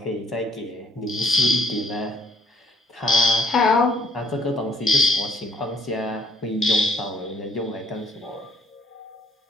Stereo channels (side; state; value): both; normal; correlation 0.65